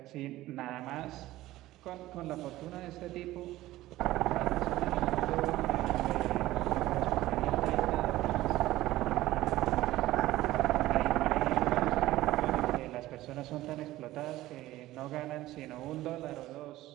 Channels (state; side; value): quieter; left; 16.3 dB